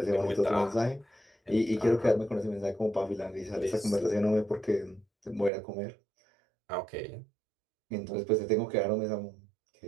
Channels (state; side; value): drops out; left; at 5.5 s